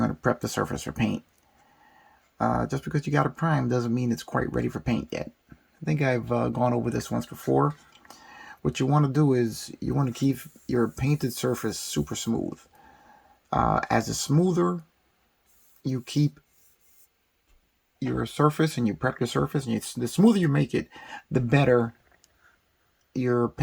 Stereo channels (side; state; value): both; identical; correlation 1.00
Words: to prep the surface for paint. Just because you got it primed doesn't mean it's quite ready for paint yet. I think I've gone over this once before. What you want to do is you want to keep your painted surface super smooth. As the smoother you keep your surface and you prep your surface, and the smoother you make it, the better your